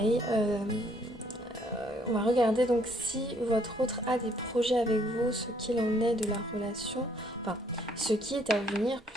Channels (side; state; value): both; normal; correlation 0.66